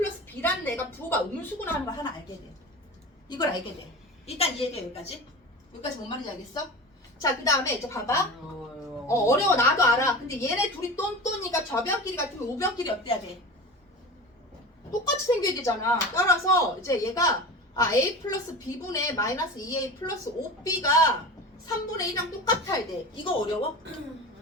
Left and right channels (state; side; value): normal; both; correlation 0.31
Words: B라는 애가 부호가 음수구나 하는 걸 하나 알게 돼. 이걸 알게 돼. 일단 이해가 여기까지. 여기까지 뭔 말인지 알겠어? 자, 그 다음에 이제 봐봐. 어려워. 나도 알아. 근데 얘네 둘이 똔똔이가 좌변끼리 같으면 우변끼리 어때야 돼? 똑같이 생겨야 되잖아. 따라서 이제 얘가 A 플러스 B분의 마이너스 2A 플러스 5B가 3분의 1이랑 똑같아야 돼. 이거 어려워?